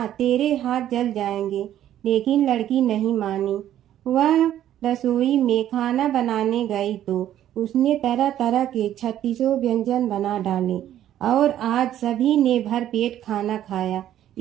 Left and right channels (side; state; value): left; quieter; 11.8 dB